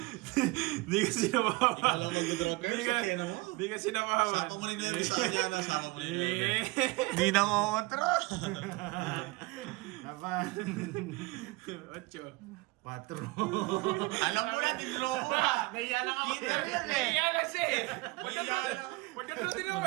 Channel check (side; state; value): left; quieter; 23.4 dB